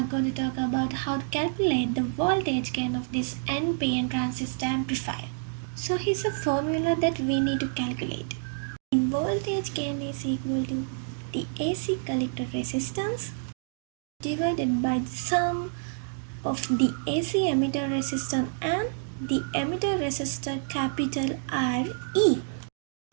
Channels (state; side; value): silent; left; digital silence